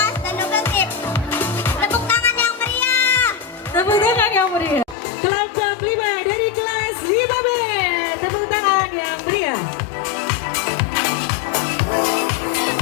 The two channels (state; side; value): drops out; right; at 5.0 s